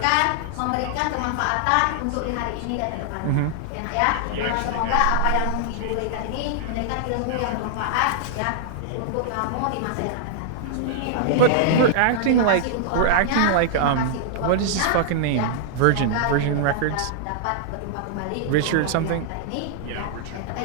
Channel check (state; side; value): different; both; correlation -0.01